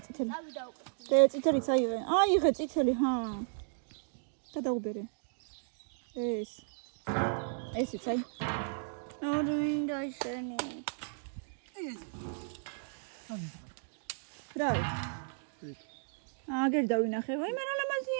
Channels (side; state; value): left; silent; digital silence